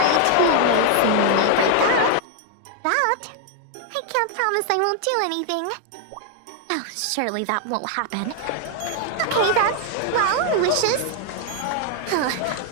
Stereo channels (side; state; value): both; different; correlation 0.00